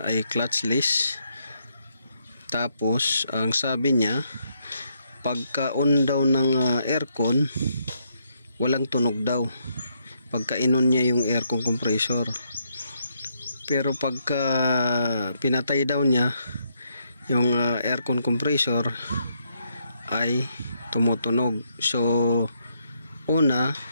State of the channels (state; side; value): inverted; both; correlation -0.76